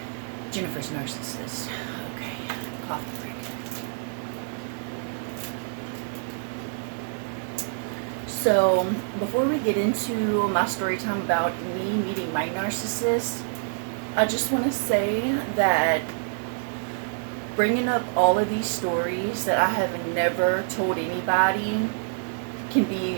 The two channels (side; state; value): left; silent; digital silence